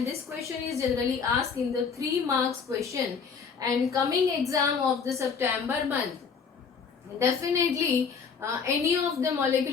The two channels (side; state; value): right; quieter; 5.9 dB